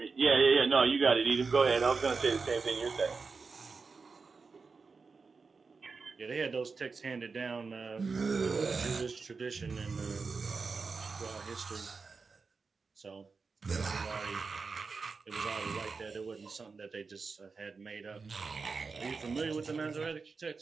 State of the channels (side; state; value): left; quieter; 4.7 dB